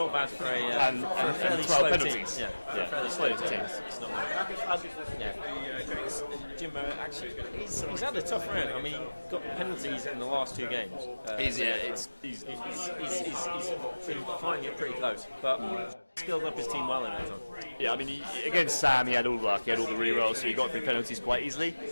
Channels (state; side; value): inverted; both; correlation -1.00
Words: bad for a and fairly 12 slow penalties. Team. Yeah, fairly slow team. teams. It's not bad. Jimbo actually, he's had a tough round. I mean, he got penalties in the last 2 games. He's been fighting it pretty close, but skilled up his team well in that time. Yeah, I mean, against Sam, he had all the luck, he had all the re-rolls, so he got through penalties quite easily.